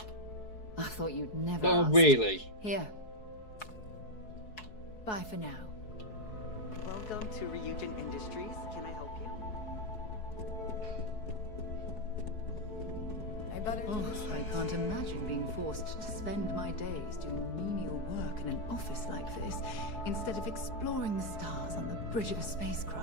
I thought you'd never Oh, ask. really? Here. Bye for now. Welcome to Ryujin Industries. Can I help you? I can't imagine being forced to spend my days doing menial work in an office like this, instead of exploring the stars on the bridge of a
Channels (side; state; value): right; late; 4.7 ms